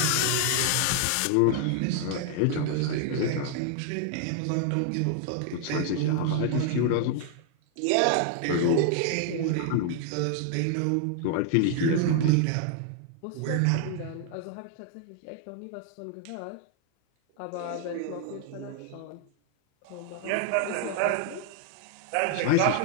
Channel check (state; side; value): different; both; correlation 0.00